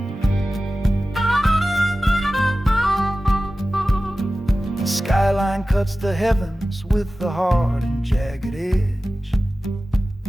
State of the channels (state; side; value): normal; both; correlation 0.95